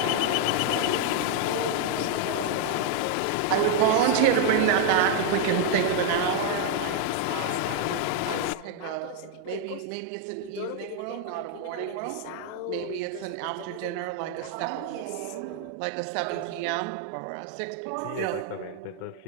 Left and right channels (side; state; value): both; different; correlation 0.00